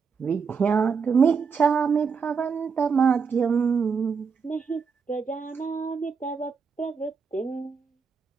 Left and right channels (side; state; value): left; quieter; 5.7 dB